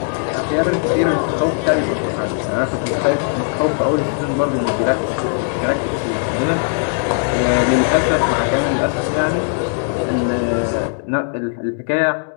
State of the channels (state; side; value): silent; right; 67 dB below the other